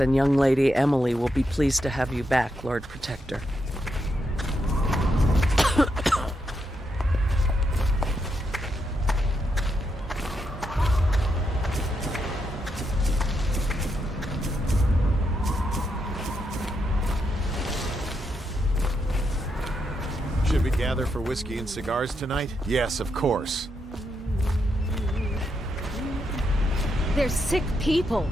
young lady Emily will be pleased to have you back, Lord Protector. Should we gather for whiskey and cigars tonight? Yes, of course. They're sick people,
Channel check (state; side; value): normal; both; correlation 0.81